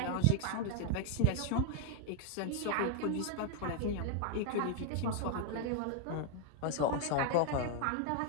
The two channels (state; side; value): different; both; correlation 0.01